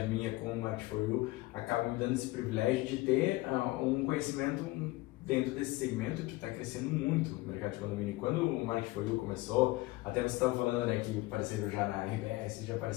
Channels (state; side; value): quieter; right; 20.2 dB